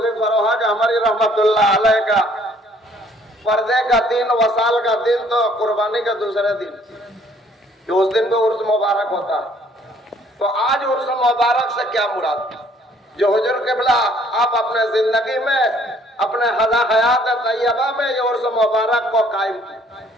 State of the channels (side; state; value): both; normal; correlation 0.61